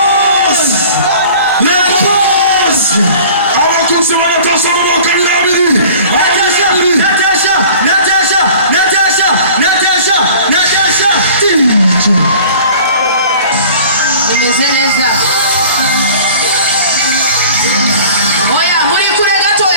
abakuzi wa Natasha mwakanirabiri Nimezeleza. Oya, muri kure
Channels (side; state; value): both; inverted; correlation -0.45